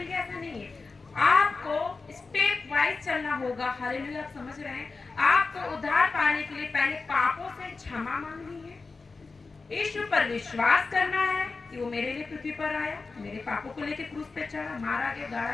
गया, ऐसा नहीं है। आपको स्टेप वाइज चलना होगा। हालेलुया, आप समझ रहे हैं? आपको उद्धार पाने के लिए पहले पापों से क्षमा मांगनी है, यीशु पर विश्वास करना है कि वो मेरे लिए पृथ्वी पर आया, मेरे पापों को लेकर क्रूस पे चढ़ा, मारा गया,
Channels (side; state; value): right; quieter; 4.1 dB